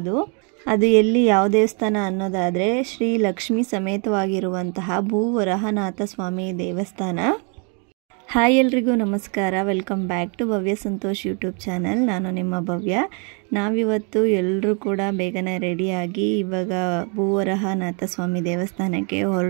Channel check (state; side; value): quieter; left; 36.9 dB